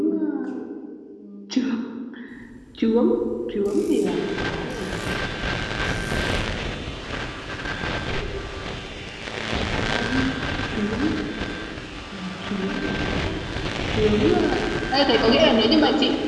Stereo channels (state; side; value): identical; both; correlation 1.00